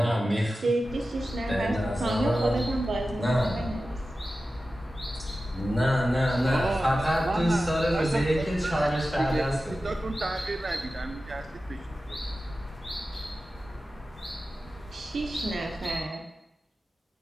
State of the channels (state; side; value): normal; both; correlation 0.94